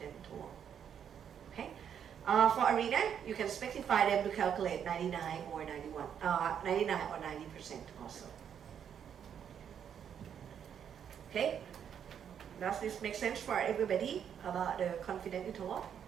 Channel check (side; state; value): left; quieter; 8.4 dB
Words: interval. Okay, for ARENA, you can specify them to calculate 99 or 91, 99 or 90% also. Okay, does this make sense for everybody about the confident interval?